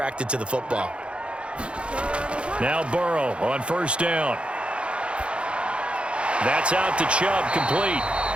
to the football. Now Burrow on first down. That's out to Chubb, complete.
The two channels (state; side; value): late; left; 0.058 ms